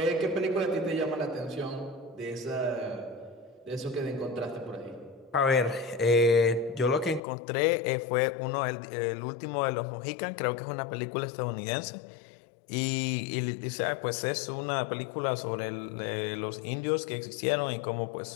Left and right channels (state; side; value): drops out; right; at 7.2 s